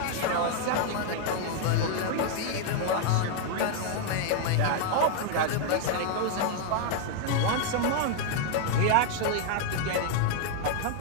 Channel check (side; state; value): both; different; correlation 0.00